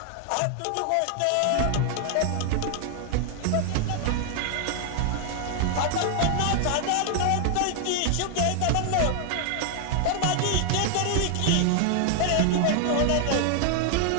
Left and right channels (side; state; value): both; different; correlation 0.00